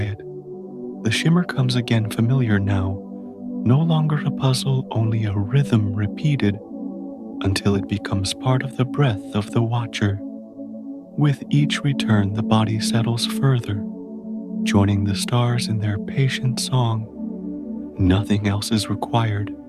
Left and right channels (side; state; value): both; identical; correlation 1.00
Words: The shimmer comes again familiar now, no longer a puzzle, only a rhythm repeated until it becomes part of the breath of the watcher. With each return, the body settles further, joining the stars in their patient song. Nothing else is required.